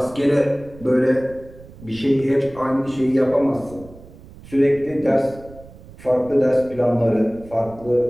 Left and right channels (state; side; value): noise; right; rumble, 20 dB below the sound